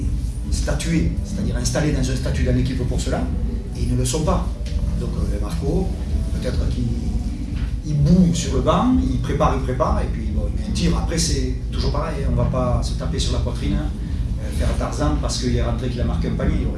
statuer, c'est-à-dire installer dans un statut dans l'équipe pour cela, et ils ne le sont pas. Donc Marco, peut-être qu'il boue sur le banc, il prépare, et puis bon, il met un tir. Après, c'est toujours pareil, on ne va pas se taper sur la poitrine, faire Tarzan parce qu'il est rentré qu'il a marqué un panier, il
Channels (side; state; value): both; identical; correlation 1.00